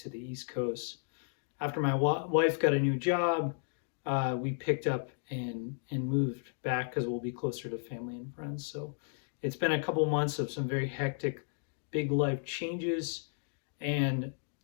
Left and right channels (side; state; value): right; silent; digital silence